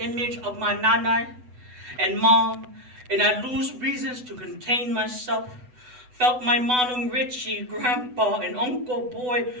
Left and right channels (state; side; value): late; left; 8.0 ms